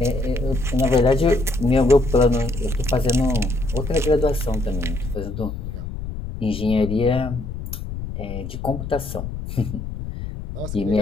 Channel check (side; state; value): left; noise; rumble, 7 dB below the sound